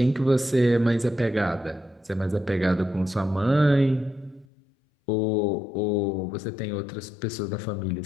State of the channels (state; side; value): drops out; right; at 4.5 s